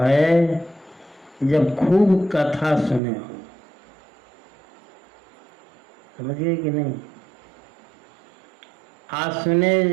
है जब खूब कथा सुने हो। समझ गए कि नहीं? आज सुने,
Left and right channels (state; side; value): drops out; left; at 3.0 s